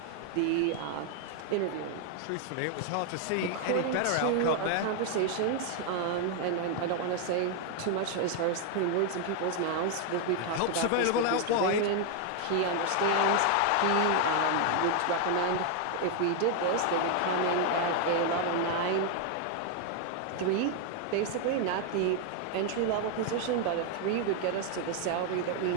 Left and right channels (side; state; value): both; different; correlation 0.00